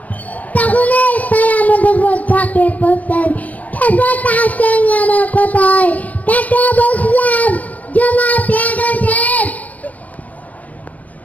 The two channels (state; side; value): late; right; 0.073 ms